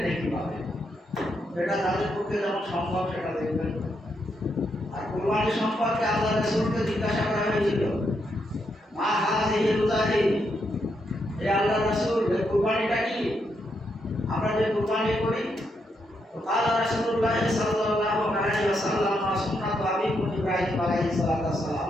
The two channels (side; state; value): both; normal; correlation 0.80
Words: নেকি পাবে। এটা তাদের পক্ষে যেমন সম্ভব সেটা দেখবেন। আর কুরবানি সম্পর্কে আল্লাহ রাসূলকে জিজ্ঞাসা করা হয়েছিল, মা হাযিহি রোজাহি, হে আল্লাহ রাসূল এই কুরবানিটা কি? আমরা যে কুরবানি করি, তো কালা রাসূলুল্লাহ সাল্লাল্লাহু আলাইহি ওয়াসাল্লাম সুন্নাত আবিকুম ইব্রাহিম আলাইহিস